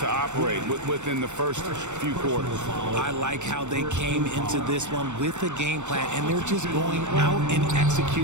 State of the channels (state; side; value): late; left; 0.84 ms